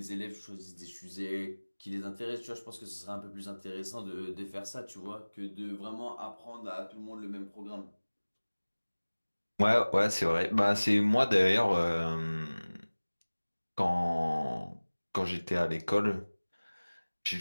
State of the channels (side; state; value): both; inverted; correlation -1.00